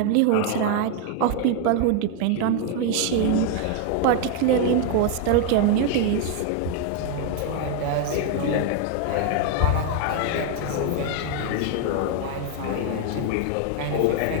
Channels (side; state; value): both; different; correlation 0.00